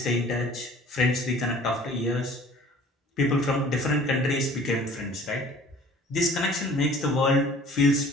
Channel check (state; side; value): normal; both; correlation 0.50